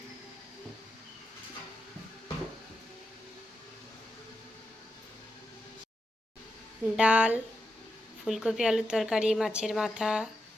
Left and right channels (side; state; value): both; normal; correlation 0.87